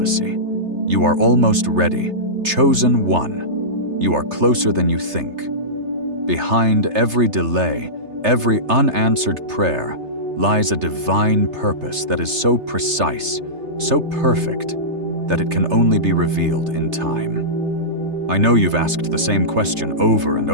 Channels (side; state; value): left; late; 3.3 ms